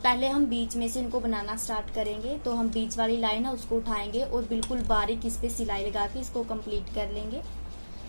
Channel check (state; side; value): inverted; both; correlation -1.00